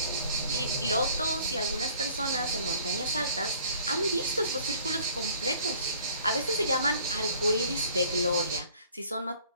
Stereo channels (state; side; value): inverted; both; correlation -0.54